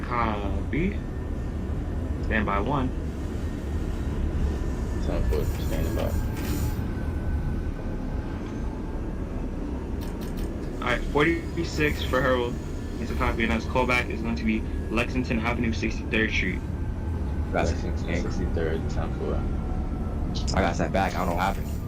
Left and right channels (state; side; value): identical; both; correlation 1.00